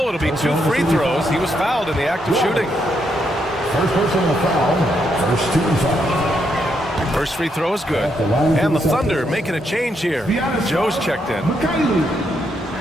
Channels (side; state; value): both; normal; correlation 0.78